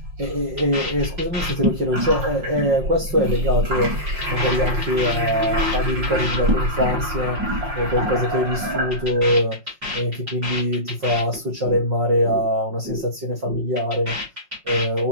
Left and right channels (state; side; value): late; left; 5.6 ms